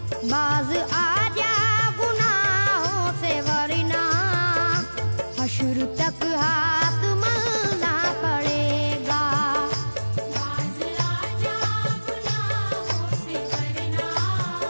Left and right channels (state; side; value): inverted; both; correlation -1.00